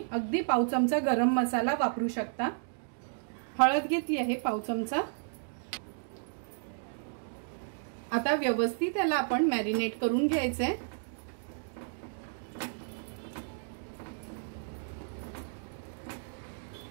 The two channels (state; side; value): silent; left; digital silence